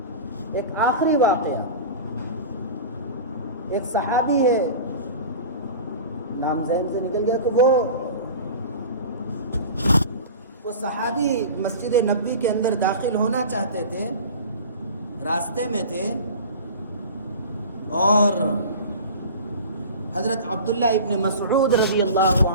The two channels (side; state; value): both; inverted; correlation -0.35